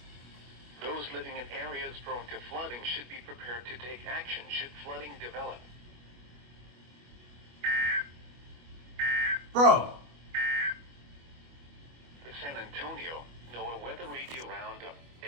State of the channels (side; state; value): left; late; 25 ms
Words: Those living in areas prone to flooding should be prepared to take action should flooding develop. Bro. The San Antonio NOAA Weather Radio Roundup